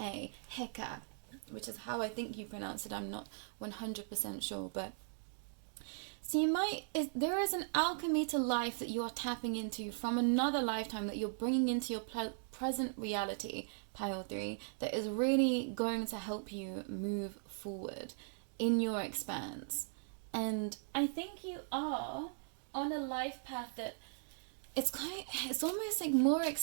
Heka, which is how I think you pronounce it. I'm not 100% sure, but so there is an alchemy to life that you are tapping into from another lifetime that you're bringing into your present reality, pile 3, that is really going to help you move forward in your expanse. And I think you are on a life path that it's almost like more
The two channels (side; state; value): left; silent; digital silence